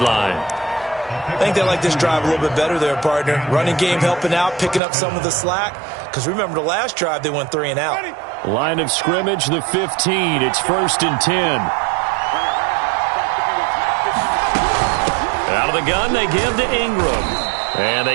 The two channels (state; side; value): drops out; left; at 4.8 s